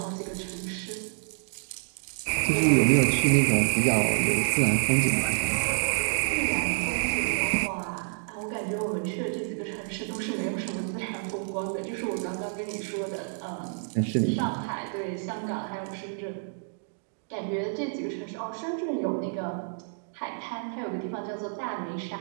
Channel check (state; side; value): silent; left; digital silence